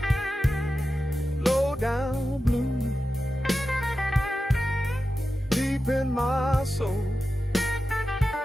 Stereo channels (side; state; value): both; normal; correlation 0.92